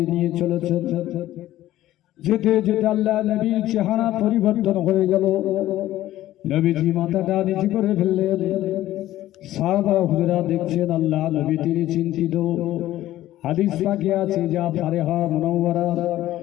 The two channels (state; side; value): quieter; right; 14.4 dB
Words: নিয়ে চলেছেন। যেতে যেতে আল্লাহ নবীর চেহারা পরিবর্তন হয়ে গেল। নবীজি মাথাটা নিচু করে ফেললেন। সাহাবা হুজুরা দেখছেন আল্লাহ নবী তিনি চিন্তিত। হাদিস পাকে আছে যা ফারেহা মুনাওয়ারা,